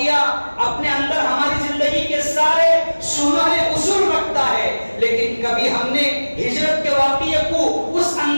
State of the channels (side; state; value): both; inverted; correlation -1.00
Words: اپنے اندر ہماری زندگی کے سارے سنہرے اصول رکھتا ہے، لیکن کبھی ہم نے ہجرت کے واقعے کو اس